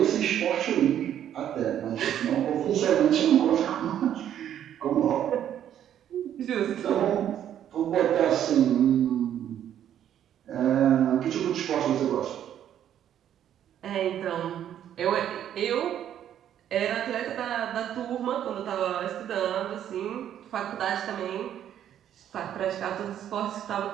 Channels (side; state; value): left; quieter; 10.4 dB